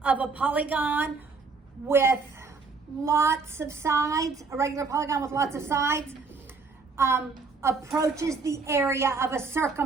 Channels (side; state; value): left; quieter; 4.4 dB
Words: of a polygon with lots of sides, a regular polygon with lots of sides, approaches the area of a